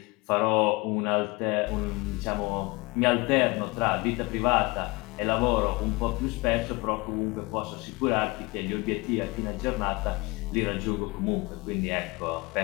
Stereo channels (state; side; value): quieter; right; 24.8 dB